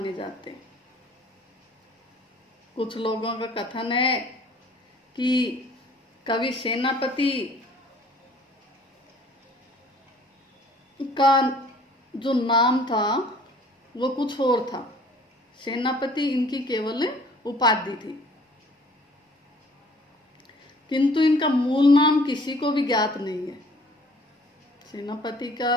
जाते हैं। कुछ लोगों का कथन है कि कवि सेनापति का जो नाम था वो कुछ और था। सेनापति इनकी केवल उपाधि थी, किंतु इनका मूल नाम किसी को भी ज्ञात नहीं है। सेनापति का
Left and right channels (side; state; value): both; normal; correlation 0.54